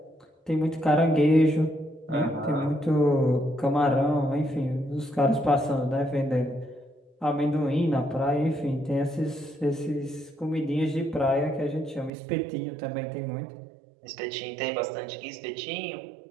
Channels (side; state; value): left; drops out; at 12.1 s